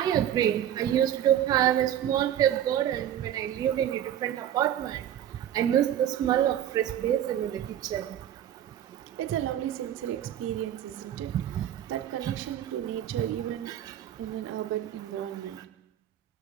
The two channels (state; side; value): quieter; left; 10.9 dB